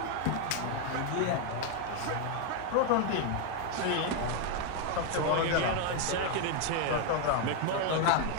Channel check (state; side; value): different; both; correlation 0.01